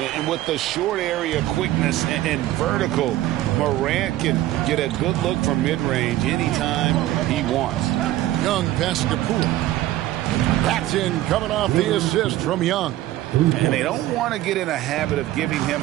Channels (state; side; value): quieter; left; 14.9 dB